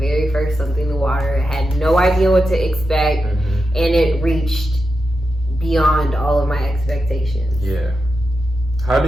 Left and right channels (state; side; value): normal; both; correlation 0.89